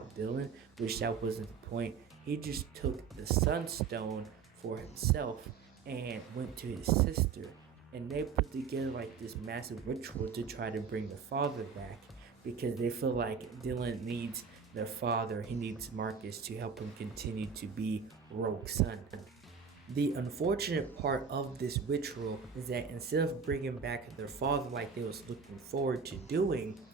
Dylan, which that wasn't the point. He just took the Sunstone for himself and went to his sister, and they put together like this massive ritual to try to bring the father back because they feel like Dylan needs their father. He needs Marcus to help him continue to be Rogue's son. The unfortunate part of this ritual is that instead of bringing back their father like they was looking forward to doing,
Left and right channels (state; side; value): quieter; left; 6.0 dB